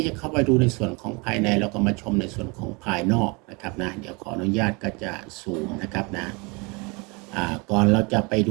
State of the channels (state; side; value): quieter; left; 28.8 dB